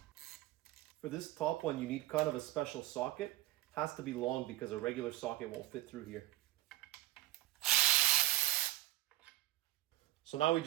For this top one, you need kind of a special socket. It has to be long because a regular socket won't fit through here. So now we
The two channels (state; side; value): quieter; left; 16.8 dB